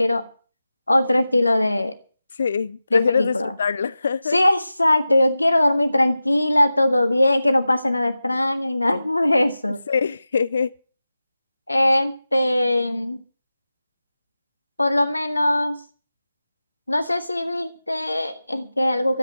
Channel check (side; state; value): both; inverted; correlation -0.94